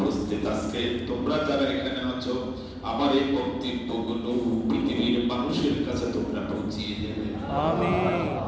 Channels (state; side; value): identical; both; correlation 1.00